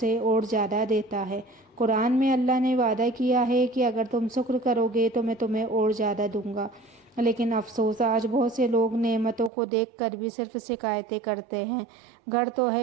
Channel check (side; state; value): left; drops out; at 9.5 s